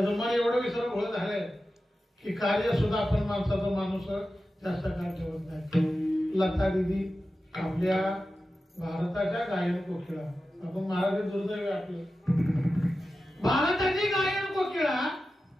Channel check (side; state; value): both; normal; correlation 0.93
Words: मन एवढं विसरभोळ झालंय की कार्य सुद्धा आपण माणसाचा माणूस जास्त काळ ठेवत नाही. लता दीदी आपल्या भारताच्या गायन कोकिळा आपण महाराज दुर्दैव आपलं भारताची गायन कोकिळा